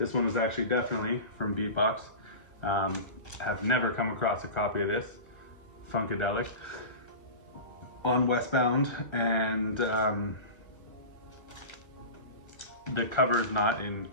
one was actually definitely from Beatbox. Have never come across a copy of this. Funkadelic on Westbound, and the cover is not in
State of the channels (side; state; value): right; late; 1.4 ms